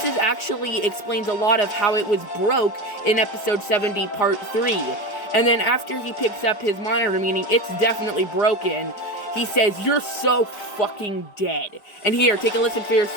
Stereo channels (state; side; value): late; right; 4.9 ms